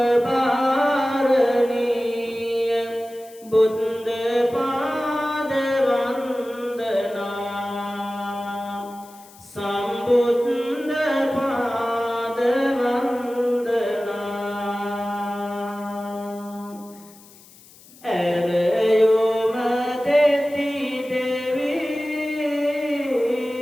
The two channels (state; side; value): noise; left; hiss, 23 dB below the sound